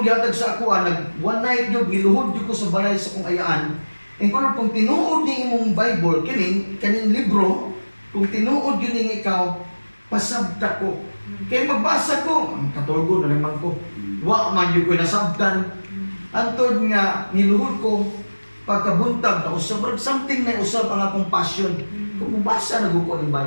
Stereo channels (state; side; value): inverted; both; correlation -1.00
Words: gihatag sa ako, one night yun, giluhod yun ko sa balay sa kong ayaan. And kung tinuod niya imong Bible, kaning libro, kung tinuod yun niya ikaw, pasabta ko. Kaya magbasa ko, ang katulgo na naman ko. Wa man yun ko nasabtan. Antod nga, niluhod ko, pagkabuntag na usab, something na usab ang akong passion. Kung mabasa na ko ng